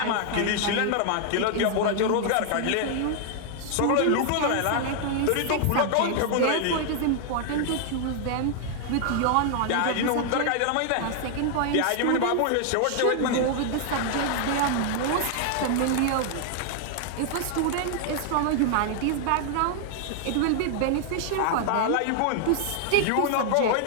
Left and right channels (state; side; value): different; both; correlation 0.00